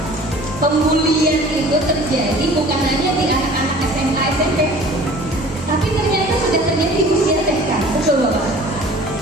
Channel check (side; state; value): both; normal; correlation 0.46